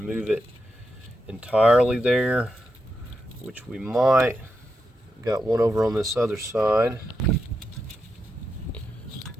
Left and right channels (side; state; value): both; normal; correlation 0.86